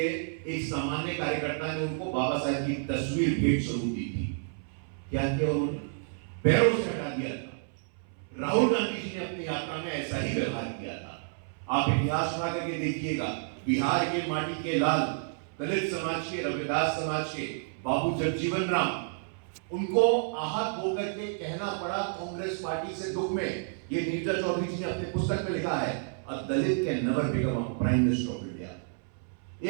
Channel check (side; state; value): left; silent; 58 dB below the other